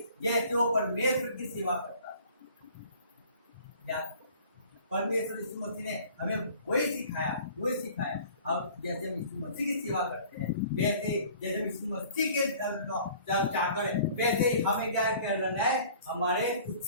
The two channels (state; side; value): inverted; both; correlation -0.49